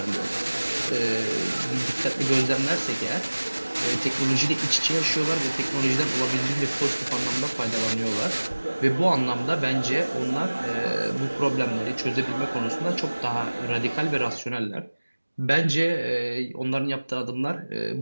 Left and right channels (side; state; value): both; inverted; correlation -1.00